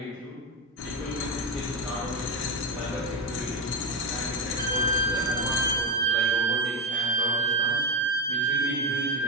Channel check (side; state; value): both; normal; correlation 0.12